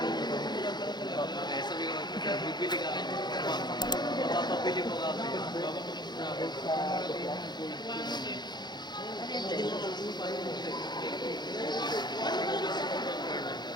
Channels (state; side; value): late; right; 0.21 ms